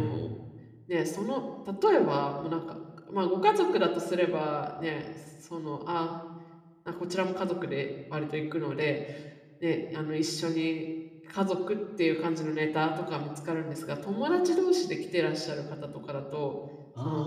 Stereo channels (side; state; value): both; identical; correlation 1.00